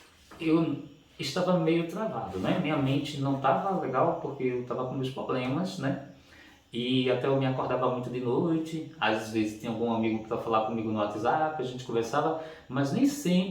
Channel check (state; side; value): identical; both; correlation 1.00